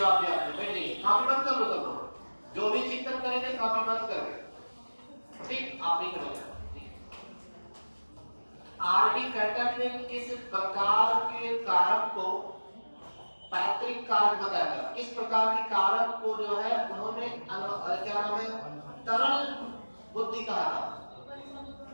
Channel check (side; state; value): both; inverted; correlation -1.00